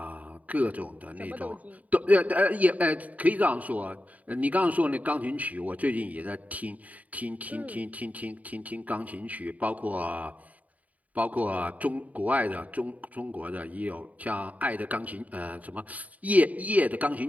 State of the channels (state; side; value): late; left; 0.072 ms